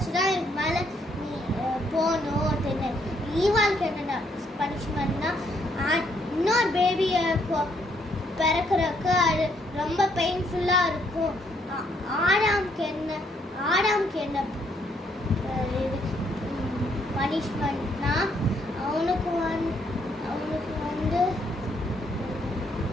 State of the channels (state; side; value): normal; both; correlation 0.71